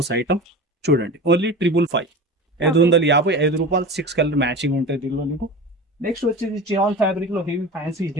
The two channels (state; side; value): normal; both; correlation 0.32